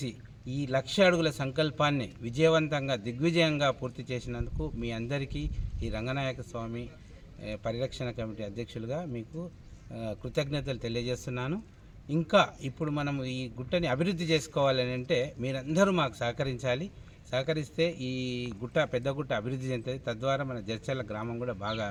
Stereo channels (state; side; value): identical; both; correlation 1.00